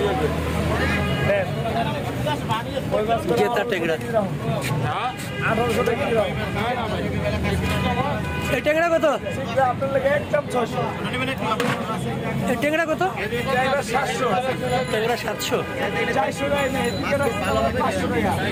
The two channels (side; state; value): both; identical; correlation 1.00